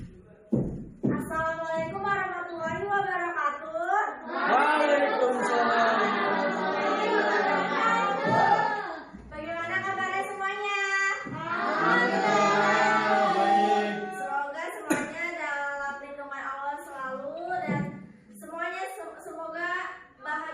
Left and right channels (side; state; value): both; identical; correlation 1.00